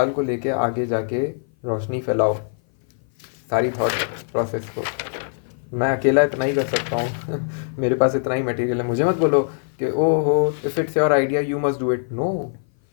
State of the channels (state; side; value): silent; right; 57 dB below the other